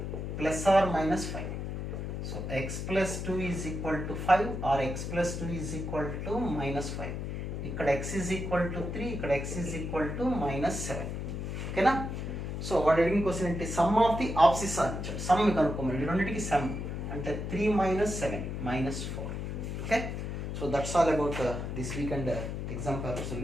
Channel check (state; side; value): noise; left; hum, 4 dB below the sound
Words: plus or minus 5. So x plus 2 is equal to 5 or x plus 2 is equal to minus 5. ఇక్కడ x is equal to 3, ఇక్కడ x is equal to minus 7. ఓకేనా? So వాడు అడిగిన question అంటే some of the ఆప్సిట్స్ అని ఇచ్చాడు. Some కనుక్కోమని, ఈ రెండింటికి సమ్ అంటే 3 minus 7 minus 4. Okay, so that's all about this week and exam paper